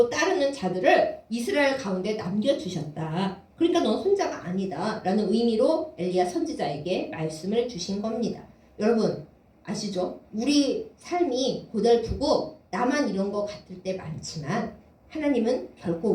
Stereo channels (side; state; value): both; identical; correlation 1.00